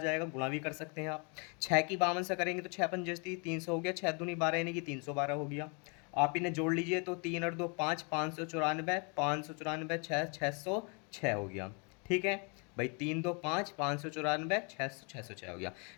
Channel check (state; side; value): quieter; right; 34.8 dB